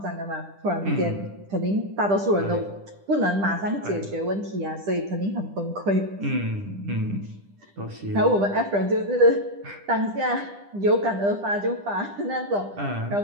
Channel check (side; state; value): left; late; 10 ms